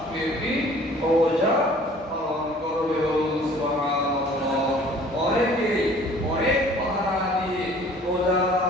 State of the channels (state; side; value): normal; both; correlation 0.51